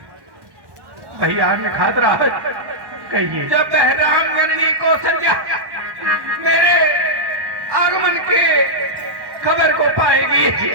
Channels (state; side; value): late; left; 1.1 ms